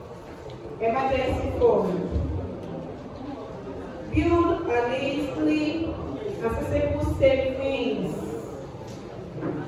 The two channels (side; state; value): both; identical; correlation 1.00